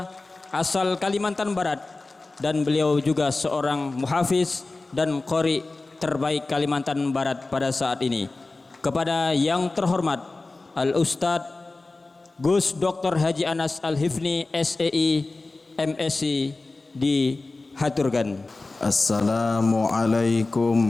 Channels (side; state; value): right; quieter; 3.3 dB